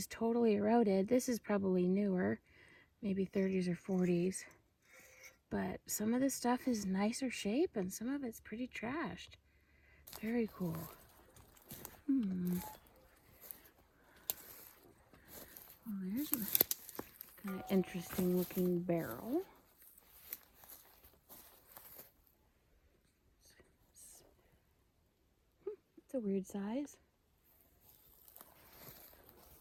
totally eroded. This is probably newer, maybe 30s or 40s. But some of this stuff is nicer shape and some of it's pretty trashed. Very cool. Well, there's a kind of interesting looking barrel. It's a weird size.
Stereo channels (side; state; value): both; identical; correlation 1.00